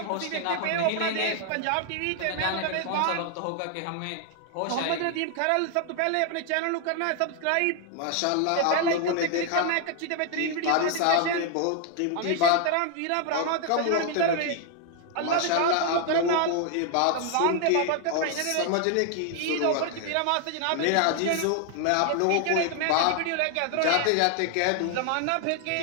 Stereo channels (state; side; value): different; both; correlation 0.00